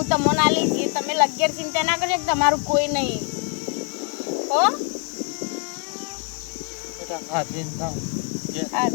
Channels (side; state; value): right; quieter; 38.5 dB